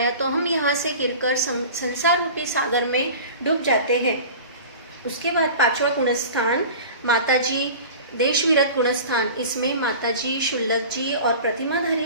तो हम यहाँ से गिरकर संसार रूपी सागर में डूब जाते हैं। उसके बाद 5वां गुणस्थान माताजी देश विरत गुणस्थान। इसमें माताजी, शुल्लक जी और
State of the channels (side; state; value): both; inverted; correlation -0.38